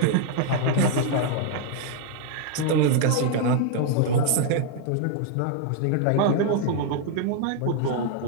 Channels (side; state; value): both; different; correlation 0.00